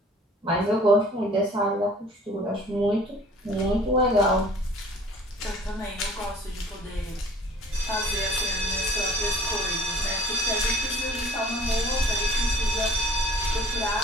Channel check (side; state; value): both; normal; correlation 0.51